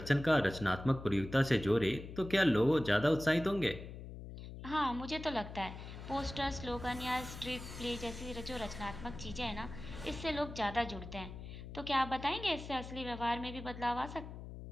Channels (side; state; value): left; noise; hum, 11 dB below the sound